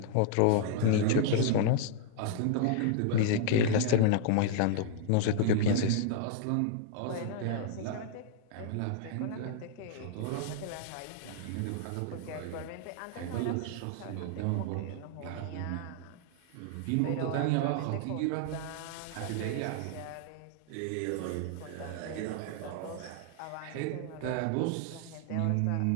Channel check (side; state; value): both; different; correlation 0.00